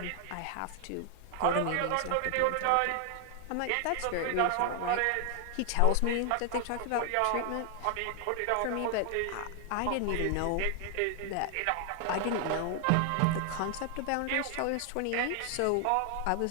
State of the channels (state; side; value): different; both; correlation 0.00